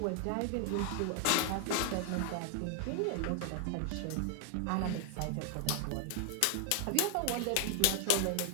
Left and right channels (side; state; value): both; different; correlation 0.00